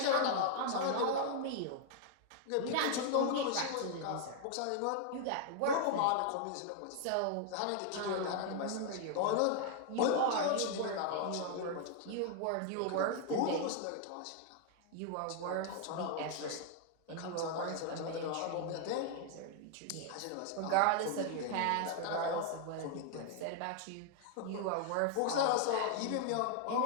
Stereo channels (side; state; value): both; different; correlation 0.00